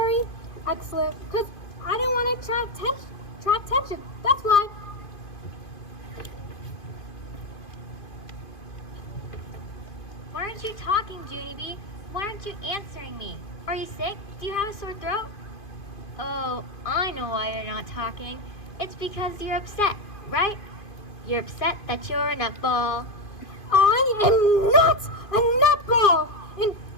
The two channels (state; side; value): late; right; 2.5 ms